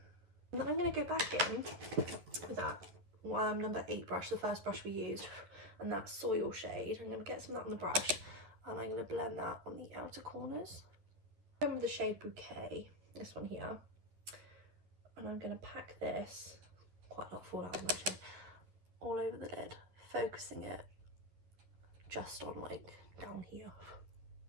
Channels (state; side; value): late; left; 11 ms